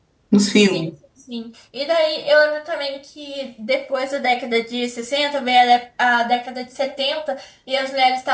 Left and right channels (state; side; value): identical; both; correlation 1.00